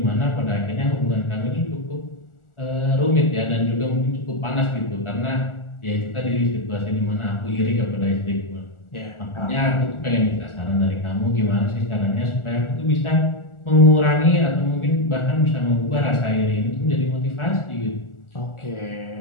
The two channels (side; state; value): right; late; 1.4 ms